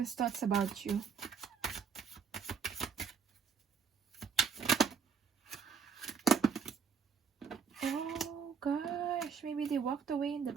thoughts about you. Oh gosh, maybe they walked away in the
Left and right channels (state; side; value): quieter; left; 6.2 dB